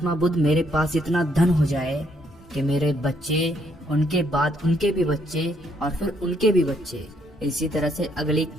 बुद्ध, मेरे पास इतना धन हो जाए कि मेरे बच्चे, उनके बाद उनके भी बच्चे और फिर उनके भी बच्चे, इसी तरह से अगली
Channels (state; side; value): normal; both; correlation 0.70